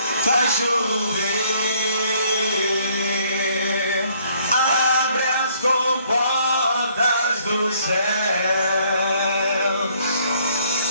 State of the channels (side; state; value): both; inverted; correlation -0.64